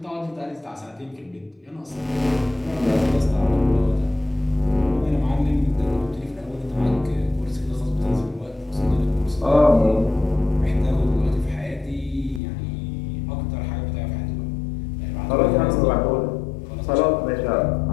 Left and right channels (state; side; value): drops out; right; at 12.4 s